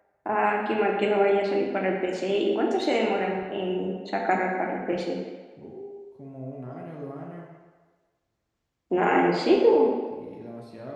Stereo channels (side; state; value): both; identical; correlation 1.00